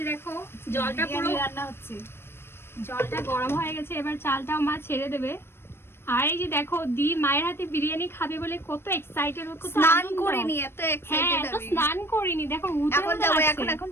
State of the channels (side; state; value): right; late; 0.12 ms